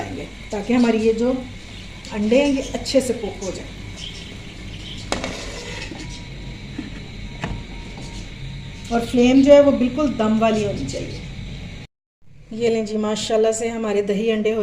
ताकि हमारी ये जो अंडे हैं ये अच्छे से कुक हो जाए। और फ्लेम जो है वो बिल्कुल दम वाली होनी चाहिए। ये लें जी, माशाल्लाह से हमारे दही अंडे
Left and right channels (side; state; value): both; identical; correlation 1.00